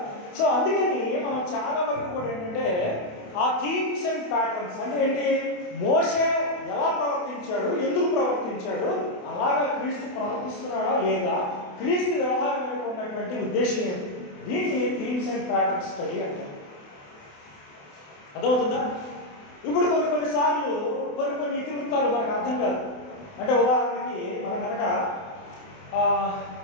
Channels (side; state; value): right; late; 28 ms